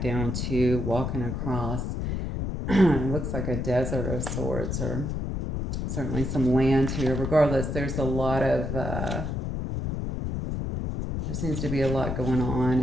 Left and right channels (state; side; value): noise; left; rumble, 2 dB below the sound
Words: down too, walking across. It looks like a desert of sorts, or certainly some land here. Regardless, there's a lot of, there seems to be a lot going